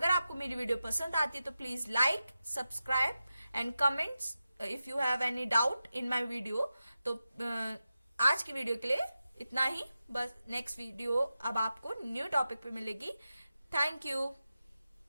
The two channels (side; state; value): both; inverted; correlation -0.91